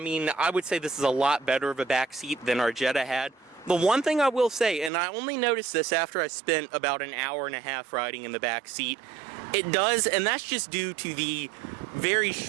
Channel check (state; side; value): drops out; left; at 4.9 s